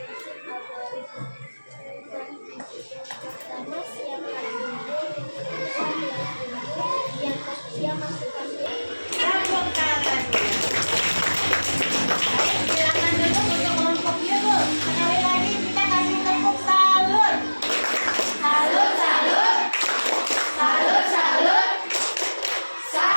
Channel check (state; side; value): inverted; both; correlation -1.00